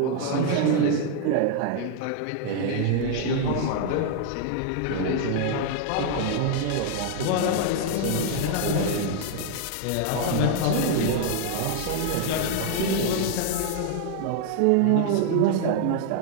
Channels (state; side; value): different; both; correlation 0.00